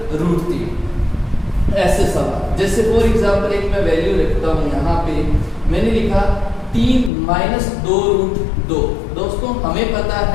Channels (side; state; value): right; drops out; at 7.1 s